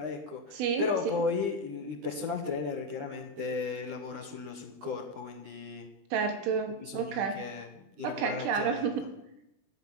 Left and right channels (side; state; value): left; late; 20 ms